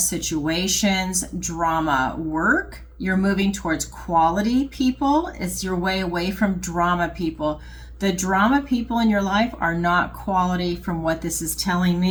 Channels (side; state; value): both; identical; correlation 1.00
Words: drama work. You're moving towards quality people. It's your way away from drama people. The drama people in your life are not quality from what this is telling